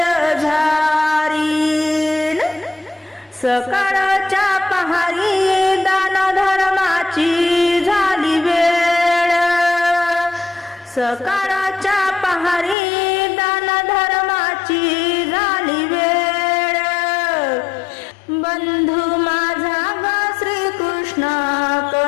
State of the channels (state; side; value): drops out; right; at 12.8 s